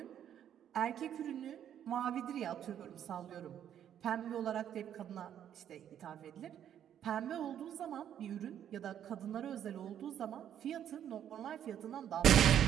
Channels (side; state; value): left; quieter; 9.9 dB